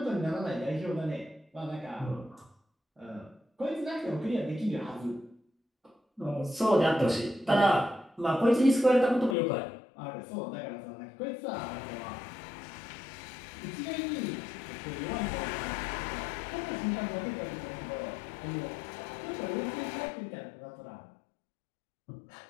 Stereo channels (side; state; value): right; drops out; at 9.3 s